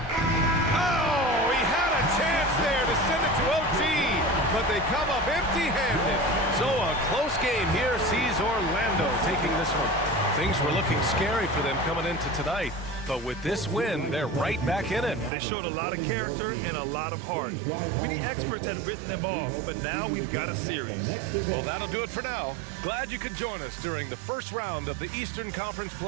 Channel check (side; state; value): left; drops out; at 15.3 s